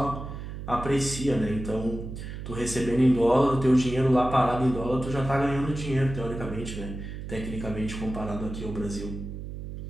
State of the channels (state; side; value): noise; right; hum, 8 dB below the sound